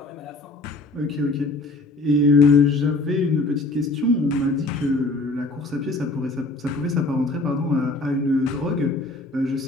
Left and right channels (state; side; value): quieter; right; 3.1 dB